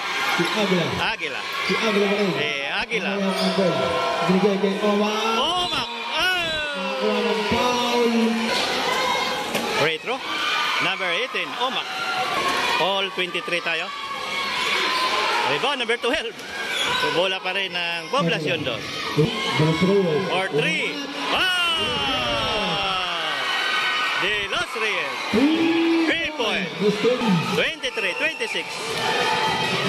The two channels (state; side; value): identical; both; correlation 1.00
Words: Si Agla. Aguila. Si Agla pa rin. Aguila. Binigay kay Omak. Omak. Nakuha ng foul. Free throw. Number 18. Omak. All 23 tayo. Rebound number 12. So, bola pa rin ng poblasyon doon. Or 3. De Los Reyes. 3 points. 23-26.